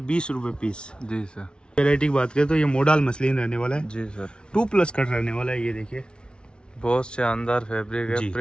20 रुपये पीस। जी सर। वेराइटी की बात करें तो ये मोडाल मसलिन रहने वाला है, जी सर। 2+ कट रहने वाला है। ये देखिए बहुत शानदार फैब्रिक जी। है,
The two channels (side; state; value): right; late; 0.056 ms